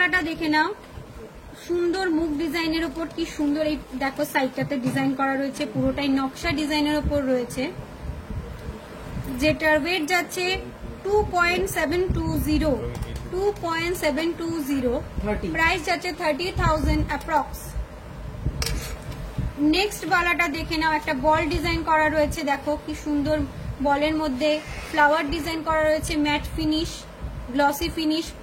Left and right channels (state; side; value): identical; both; correlation 1.00